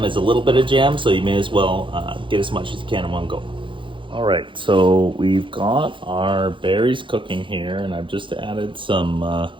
as a little bit of jam, so you may as well get as much as you can in one go. All right, so we've got our berries cooking here, and I've just added some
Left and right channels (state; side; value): late; left; 0.24 ms